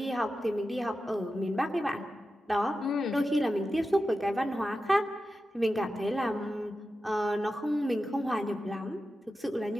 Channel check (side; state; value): both; normal; correlation 0.92